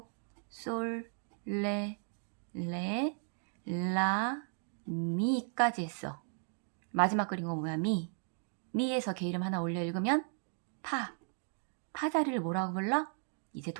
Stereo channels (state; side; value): silent; left; 54 dB below the other